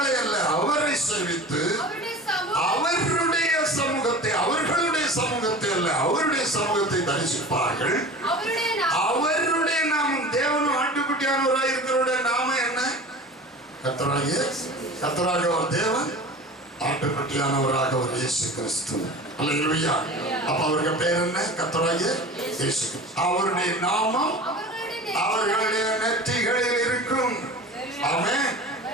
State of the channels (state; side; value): normal; both; correlation 0.37